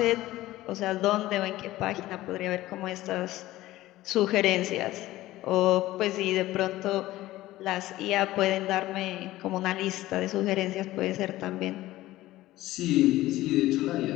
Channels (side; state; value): right; quieter; 16.4 dB